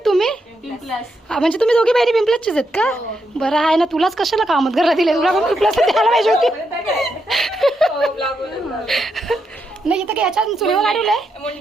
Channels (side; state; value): both; normal; correlation 0.81